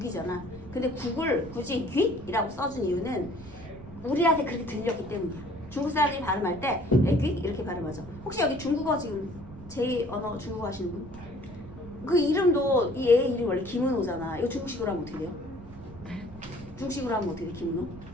근데 국을 굳이 귀이라고 써준 이유는 우리한테 그렇게 들렸기 때문이야. 중국 사람들이 발음할 때 애귀 이렇게 발음하죠. 혹시 여기 중국어 지금 제2언어 중국어 하시는 분? 그 이름도 이 애 이름이 원래 김은호잖아. 이거 중국식으로 하면 어떻게 돼요? 중국식으로 하면 어떻게 돼, 김은호?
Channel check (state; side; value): noise; right; rumble, 16 dB below the sound